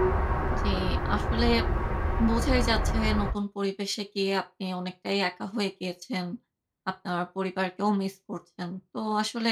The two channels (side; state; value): both; identical; correlation 1.00